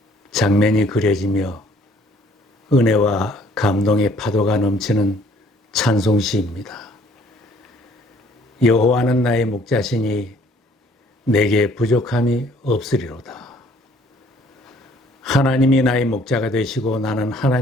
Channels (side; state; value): both; normal; correlation 0.59